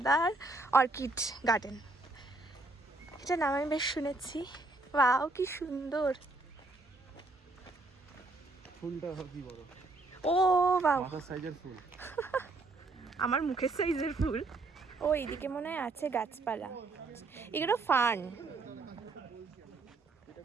অর্কিড গার্ডেন। এটা নাম আমি বেশ শুনেছি। ওয়াও কি সুন্দর, ফুলটা কি বড়, ও বাবা মাথার সাইজের ফুল। আমার মুখের সাইজের ফুল। ও এইদিকে মনে হয় আছে গাছপালা, এগুলো ফার্ন।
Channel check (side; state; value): left; quieter; 3.2 dB